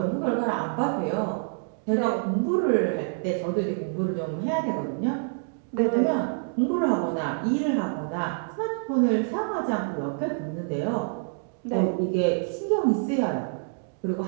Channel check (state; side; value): silent; left; digital silence